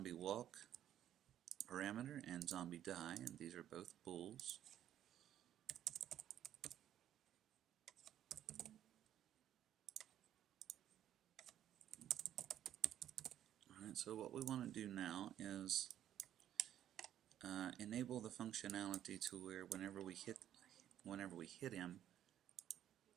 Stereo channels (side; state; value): left; quieter; 11.1 dB